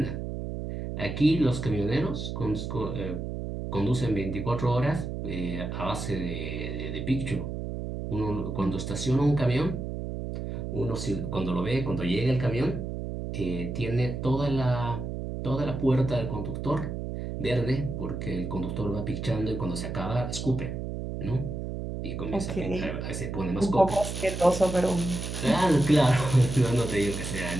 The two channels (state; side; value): noise; right; hum, 5 dB below the sound